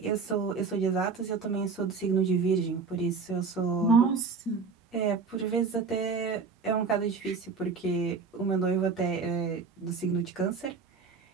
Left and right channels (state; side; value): quieter; left; 5.0 dB